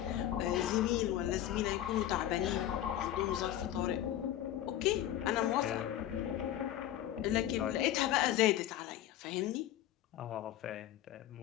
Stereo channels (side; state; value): right; quieter; 12.5 dB